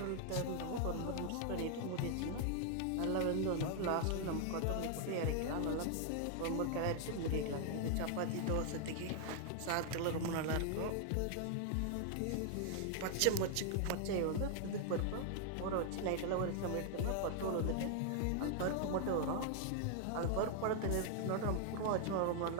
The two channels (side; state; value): both; different; correlation 0.00